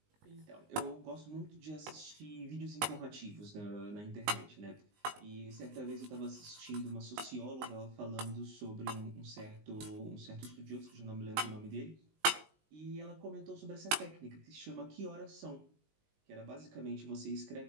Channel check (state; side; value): late; left; 19 ms